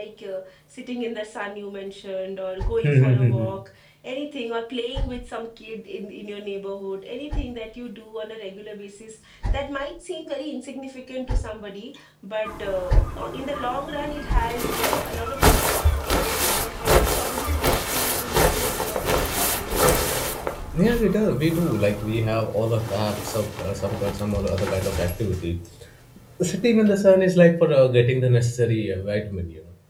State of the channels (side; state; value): both; identical; correlation 1.00